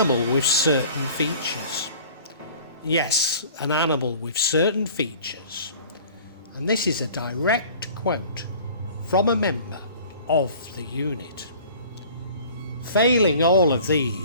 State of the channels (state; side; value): inverted; both; correlation -0.47